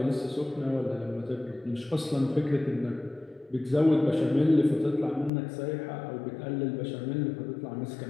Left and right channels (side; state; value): right; drops out; at 5.3 s